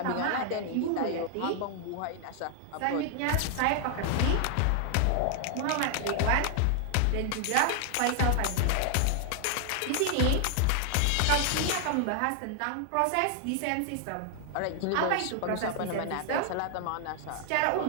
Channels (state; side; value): different; both; correlation 0.00